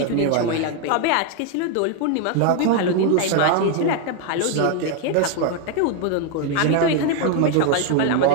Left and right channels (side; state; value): both; different; correlation 0.01